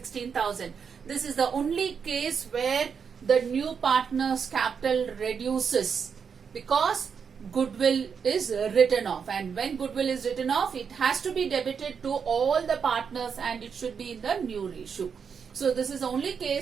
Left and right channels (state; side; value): quieter; left; 6.5 dB